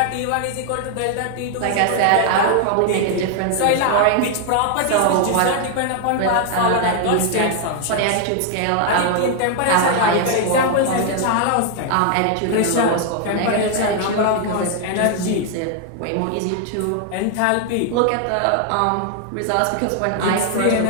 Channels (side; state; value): both; different; correlation 0.00